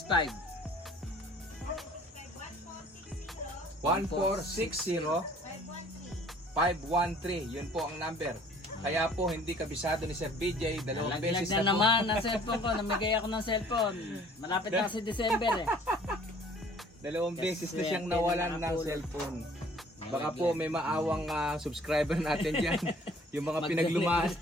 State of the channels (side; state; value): both; normal; correlation 0.54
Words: 1460 513. Yun po ang number. Kaya po hindi kabisado ni Sir BJ, dalawang beses na na po. naman ang cellphone ko. Namigay ako ng cellphone. Malapit na kasi December eh. Dalawang beses na siyang nawalan ng cellphone. Baka po may maawang subscriber natin dyan. Yung mga